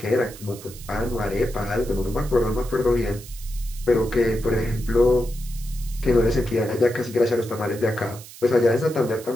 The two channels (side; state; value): right; noise; hiss, 17 dB below the sound